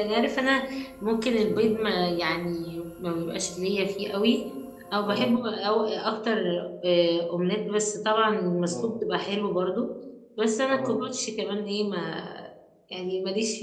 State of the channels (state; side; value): identical; both; correlation 1.00